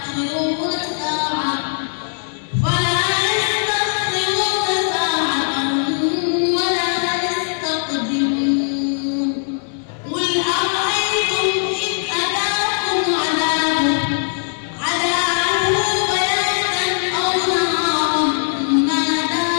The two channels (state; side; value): silent; right; 59 dB below the other